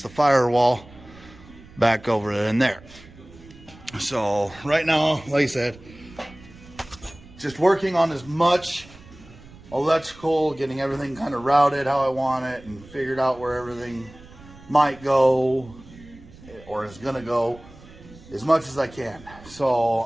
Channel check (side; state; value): right; noise; rumble, 21 dB below the sound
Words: the firewall back over in there. So right now, like I said, just working on as much electrical, getting everything kind of routed how I want it, and figured out where everything might go or is gonna go as much as I can. So